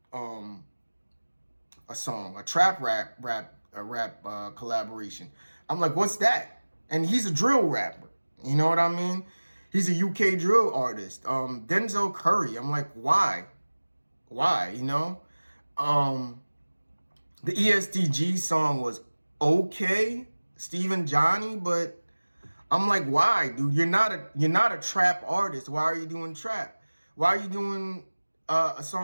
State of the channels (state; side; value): inverted; both; correlation -1.00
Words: song, a trap rap collaboration. I'm like, what's that? And he's a drill rapper. You know what I mean? He's a UK drill artist. Denzel Curry. I'm like, why? Why? The ESTG song was okay, Stephen Johnny, but I'm like, why, dude? You're not a trap artist. Why are you doing trap? Why are you doing